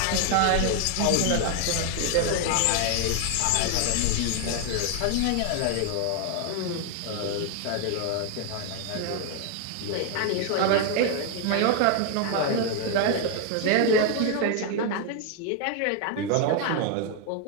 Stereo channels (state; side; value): different; both; correlation 0.00